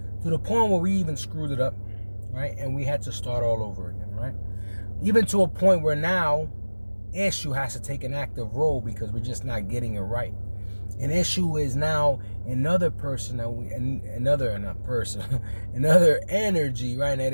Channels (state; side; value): inverted; both; correlation -1.00